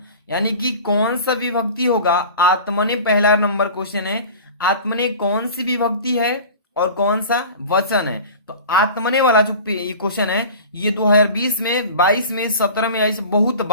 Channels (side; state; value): both; inverted; correlation -0.38